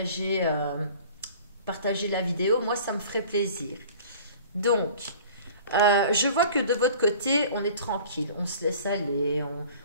la vidéo. Moi, ça me ferait plaisir. Donc, je vois que de votre côté, on est tranquille, on se laisse aller,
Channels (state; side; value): inverted; both; correlation -0.45